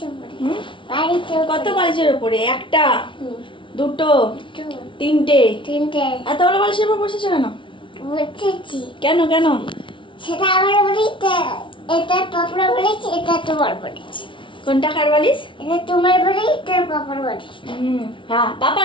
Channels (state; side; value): late; right; 0.25 ms